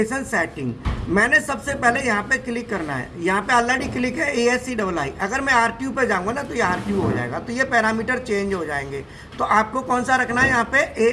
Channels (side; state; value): both; identical; correlation 1.00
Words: सेटिंग। मैंने सबसे पहले यहाँ पे क्लिक करना है, यहाँ पे ऑलरेडी क्लिक है ASCII। अगर मैं RTU पे जाऊँगा ना तो ये RTU हो जाएगा, तो ये पैरामीटर चेंज हो जाएंगे। तो आपको कौन सा रखना है, यहाँ पे